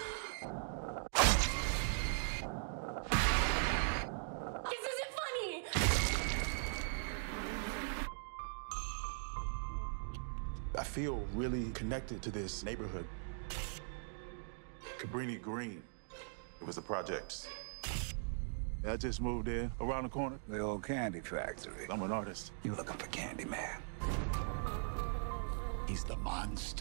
This isn't funny! I feel really connected to this neighborhood. Cabrini Green. It was the projects. I just moved in around the corner. The old candy factory. I'm an artist. You looking for Candyman? He's the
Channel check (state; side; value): silent; left; digital silence